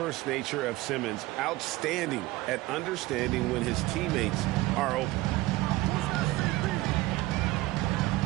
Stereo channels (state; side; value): quieter; left; 18.8 dB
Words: nature of Simmons, outstanding at understanding when his teammates are open.